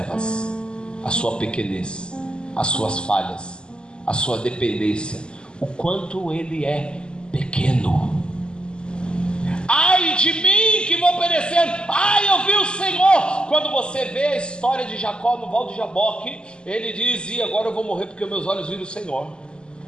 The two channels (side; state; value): right; late; 0.049 ms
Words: a sua pequenez, as suas falhas, a sua dependência, o quanto ele é pequeno. Ai de mim que vou perecendo, ai eu vi o Senhor. Quando você vê a história de Jacó no Val de Jaboque, ele diz: e agora eu vou morrer porque meus olhos viram o Senhor.